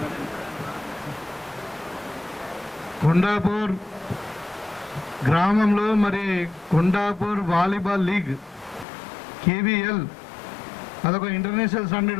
కొండాపూర్ గ్రామంలో మరి కొండాపూర్ వాలీబాల్ లీగ్ కేవీఎల్ అదొక ఇంటర్నేషనల్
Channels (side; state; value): right; drops out; at 8.8 s